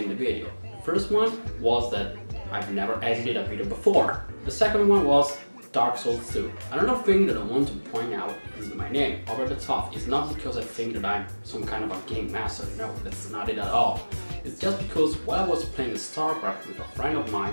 the video. The first one was that I've never edited a video before. The second one was Dark Souls 2. Another thing that I want to point out is my name, Over the Top. It's not because I think that I'm some kind of a game master, no, that's not it at all. It's just because while I was playing StarCraft with a friend of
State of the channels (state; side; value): inverted; both; correlation -1.00